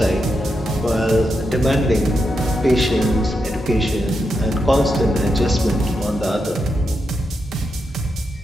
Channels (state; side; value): normal; both; correlation 0.85